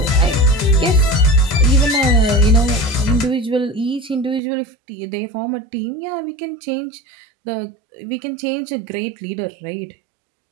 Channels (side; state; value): left; drops out; at 4.4 s